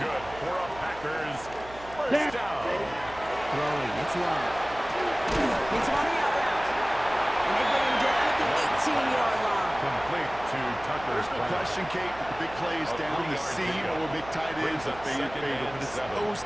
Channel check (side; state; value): right; noise; hum, 18 dB below the sound